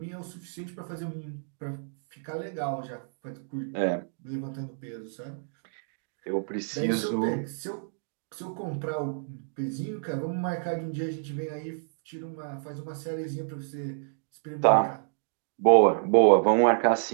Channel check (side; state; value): left; silent; digital silence